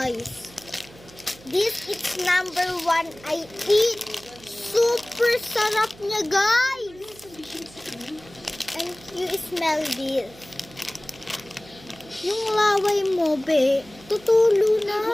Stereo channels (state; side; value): noise; right; hum, 22 dB below the sound